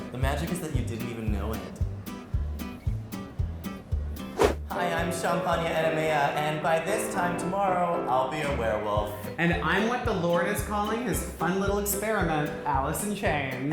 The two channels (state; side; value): identical; both; correlation 1.00